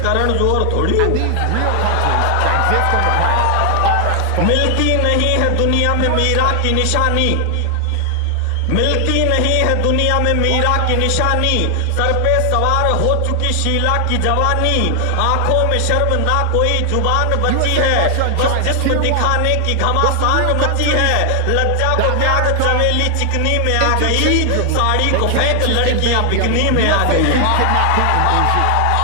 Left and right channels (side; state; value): both; different; correlation 0.00